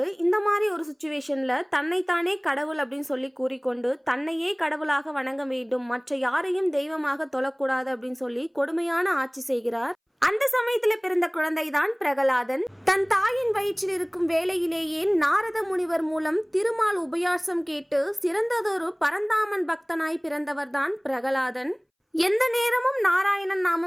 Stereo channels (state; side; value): identical; both; correlation 1.00